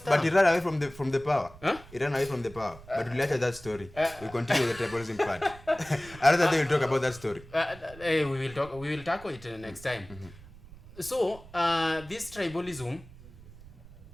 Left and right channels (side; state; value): right; noise; rumble, 19 dB below the sound